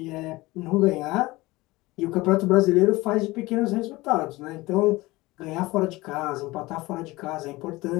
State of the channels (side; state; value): right; quieter; 20.4 dB